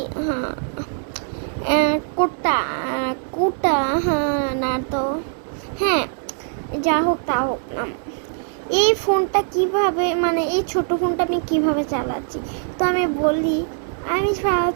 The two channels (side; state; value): left; silent; digital silence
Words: হ্যাঁ কোটা কুটা, হ্যাঁ না তো হ্যাঁ যা হোক তা হোক না। এই ফোনটা কিভাবে মানে এই ছোট ফোনটা আমি কিভাবে চালাচ্ছি, তো আমি বলি আমি